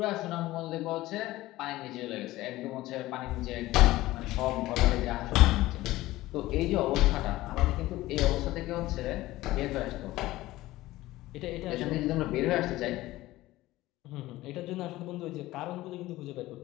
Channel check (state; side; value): quieter; right; 17.3 dB